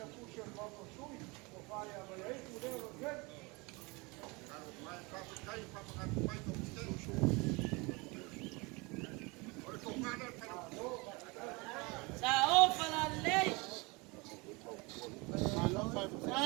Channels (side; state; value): left; quieter; 26.7 dB